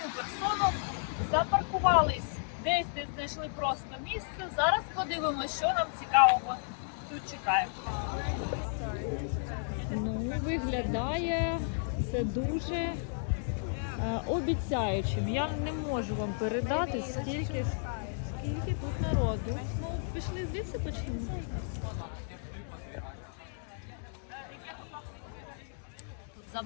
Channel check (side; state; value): right; silent; digital silence